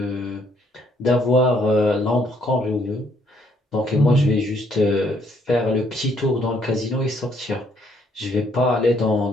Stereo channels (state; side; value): normal; both; correlation 0.68